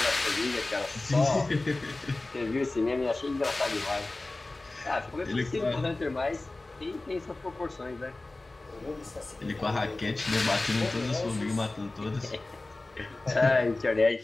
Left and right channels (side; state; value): right; quieter; 3.0 dB